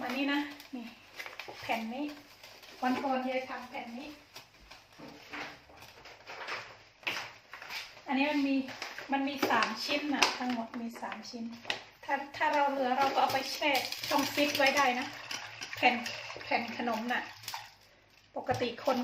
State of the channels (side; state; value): both; identical; correlation 1.00